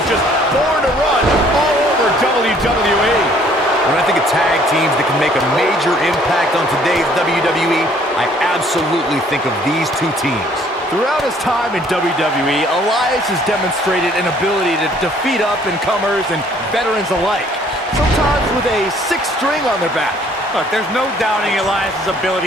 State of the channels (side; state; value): both; normal; correlation 0.60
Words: just born to run all over WWE. When I think of tag teams that can make a major impact on today's WWE, I absolutely think of these two teams. Throughout his time in WWE, Elias has demonstrated an ability to defeat up-and-comers and veterans alike, sometimes with a sixth string on their back. Look, there's no doubting Elias'